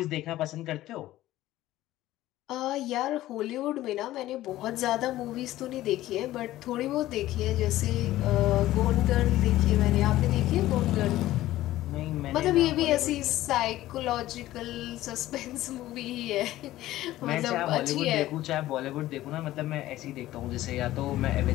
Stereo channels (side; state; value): right; quieter; 15.3 dB